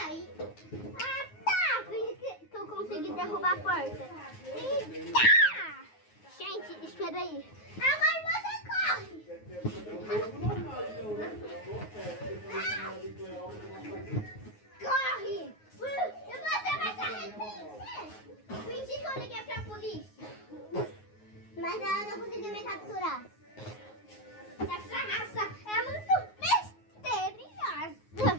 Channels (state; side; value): late; right; 9.5 ms